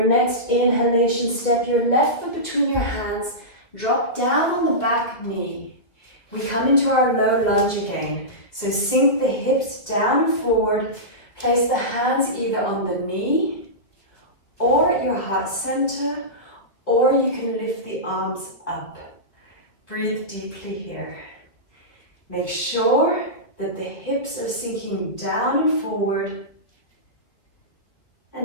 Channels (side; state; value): right; late; 2.2 ms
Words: next inhalation, step your left foot between your hands, drop down on the back knee. We come into our low lunge again. So sink the hips down and forward, place the hands either on the knee or at your heart center, or you can lift the arms up. Breathe deeply here. Make sure that the hips are sinking down and forward.